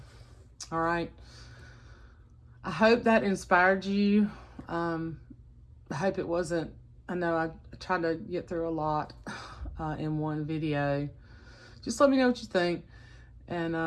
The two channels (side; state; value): both; identical; correlation 1.00